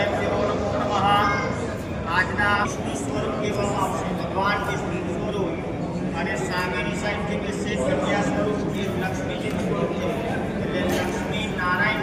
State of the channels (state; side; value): identical; both; correlation 1.00